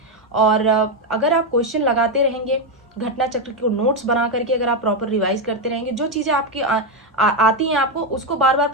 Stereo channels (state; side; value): normal; both; correlation 0.06